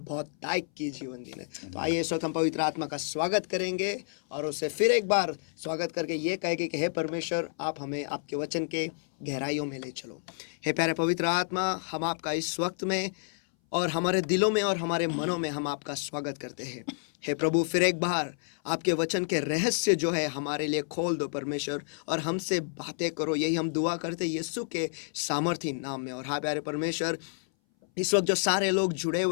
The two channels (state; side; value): silent; right; 58 dB below the other